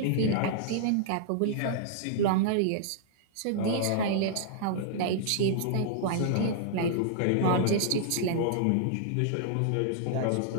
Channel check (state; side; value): different; both; correlation -0.01